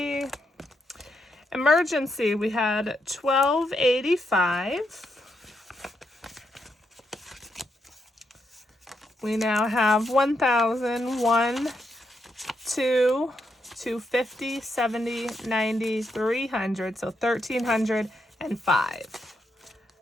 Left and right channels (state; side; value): normal; both; correlation 0.81